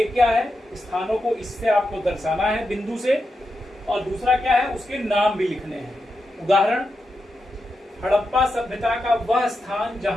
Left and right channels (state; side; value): normal; both; correlation 0.87